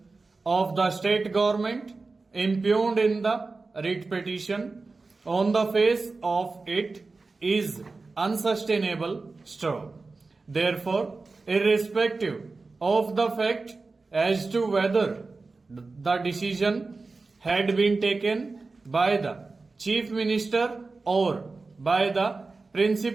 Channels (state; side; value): quieter; left; 3.8 dB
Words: of the state government impugned in the writ petition on the face of it is unsustainable. Therefore, irrespective of the fact as to whether the decision had been taken by the Chief Minister or by the